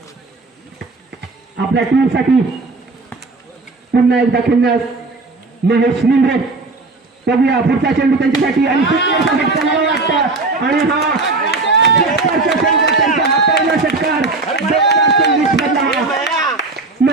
आपल्या टीमसाठी पुन्हा एकदा खेळण्यास महेश निंद्रे. बघूया पुढचा चेंडू त्यांच्यासाठी आणि सुंदरचा फटका मला वाटतं आणि हा त्यांचा हा पहिला षटकार 2024 मधला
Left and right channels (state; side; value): quieter; left; 3.6 dB